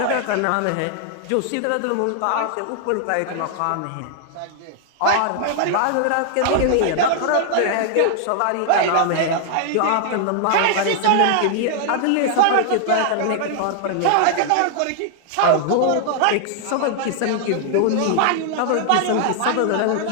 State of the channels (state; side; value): different; both; correlation 0.00